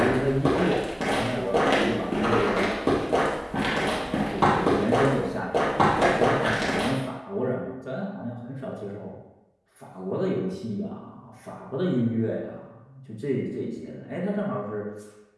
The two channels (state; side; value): identical; both; correlation 1.00